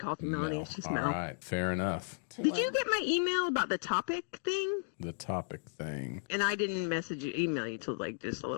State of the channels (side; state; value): right; silent; digital silence